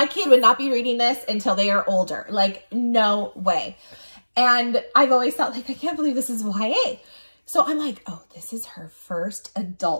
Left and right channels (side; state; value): both; inverted; correlation -1.00